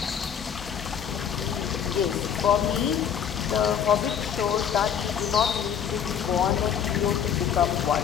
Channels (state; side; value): quieter; right; 8.3 dB